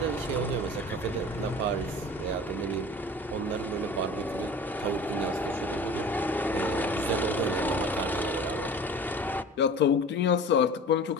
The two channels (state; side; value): normal; both; correlation 0.40